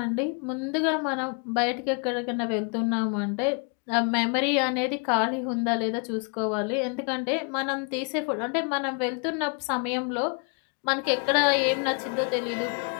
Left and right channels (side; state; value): right; quieter; 36.8 dB